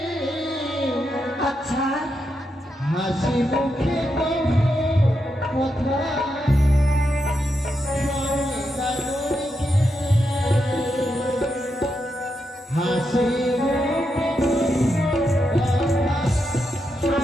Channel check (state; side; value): normal; both; correlation 0.84